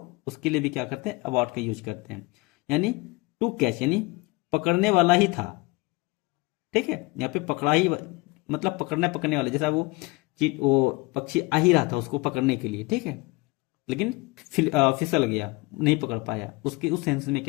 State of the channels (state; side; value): quieter; right; 24.2 dB